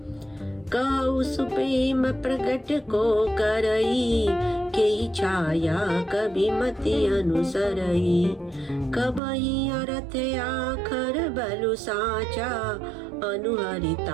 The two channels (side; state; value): left; drops out; at 9.2 s